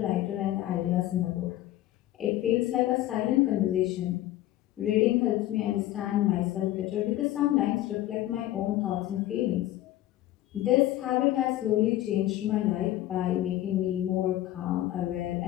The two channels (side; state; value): right; quieter; 14.6 dB